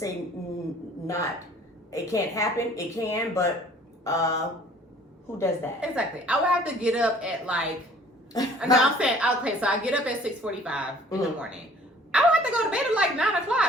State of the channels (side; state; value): both; normal; correlation 0.53